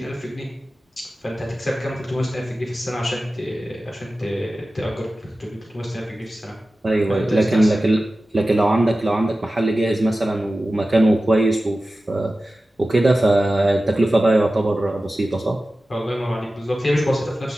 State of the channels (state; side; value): normal; both; correlation 0.95